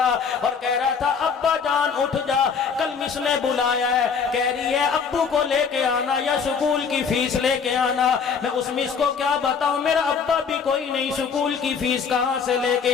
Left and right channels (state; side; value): quieter; right; 6.1 dB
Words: اور کہہ رہا تھا ابا جان اٹھ جا, کل مس نے بلایا ہے, کہہ رہی ہے ابو کو لے کے آنا یا سکول کی فیس لے کے آنا. میں اس مس کو کیا بتاؤں, میرا ابا بھی کوئی نہیں, سکول کی فیس کہاں سے لے